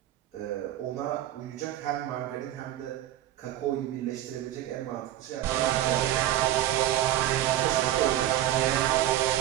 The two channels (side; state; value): left; quieter; 12.9 dB